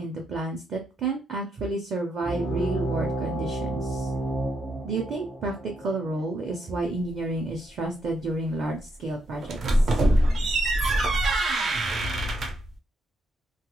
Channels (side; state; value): both; normal; correlation 0.78